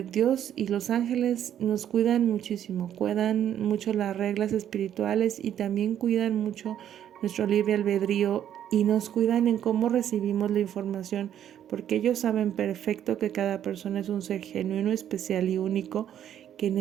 Dios y los ángeles nos cuidan muchísimo, cuidan mucho las reglas espirituales y también cuidan mucho nuestro libre albedrío y nos cuidan en cómo recibimos la información, porque ellos saben perfecto que cada persona es un ser genuino, especial y único que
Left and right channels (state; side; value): quieter; left; 10.3 dB